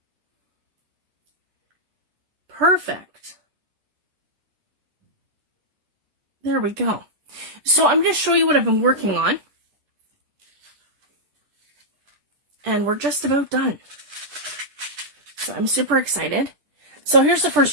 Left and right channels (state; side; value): late; left; 10 ms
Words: Perfect. There we go. So I'm going to show you what I've been working on. And we're just about done. So I'm super excited. So here's the